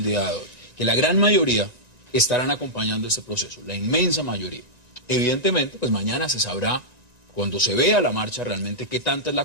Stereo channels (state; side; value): late; left; 1.9 ms